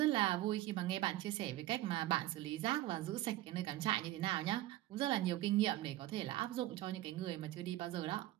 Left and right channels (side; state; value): left; quieter; 15.7 dB